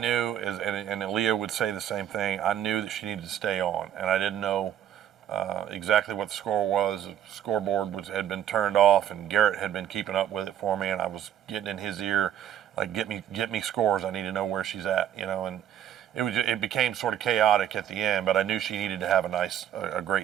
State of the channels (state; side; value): quieter; left; 10.3 dB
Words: is, and Aaliyah would say the same thing, I knew that she needed to stay on, and I didn't know exactly what the score was. The scoreboard had been turned off, and Garrett had been keeping up with it for me, and I was getting in his ear, like, get me scores. I need to know where she's at, and it became sort of chaotic at the end, but I knew she needed to have a